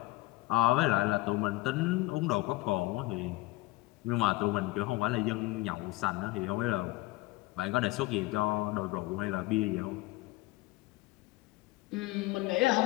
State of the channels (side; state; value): right; quieter; 20.1 dB